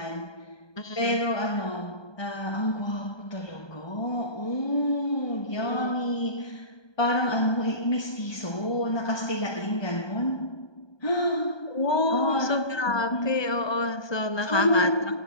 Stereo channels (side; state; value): right; late; 1.2 ms